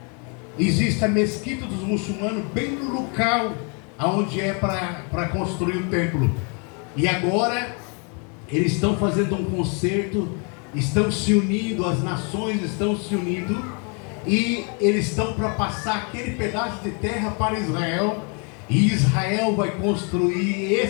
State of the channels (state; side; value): quieter; right; 36.4 dB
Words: Existe a mesquita dos muçulmanos bem no local onde é para construir o templo. E agora eles estão fazendo um concerto, estão se unindo, as nações estão se unindo, e eles estão para passar aquele pedaço de terra para Israel. E Israel vai construir